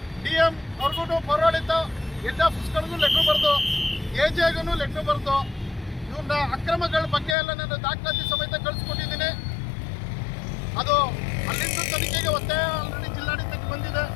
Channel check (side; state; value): right; drops out; at 7.4 s